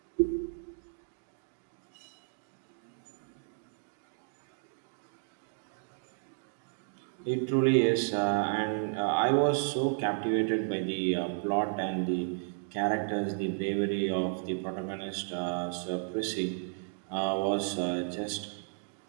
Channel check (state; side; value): silent; left; digital silence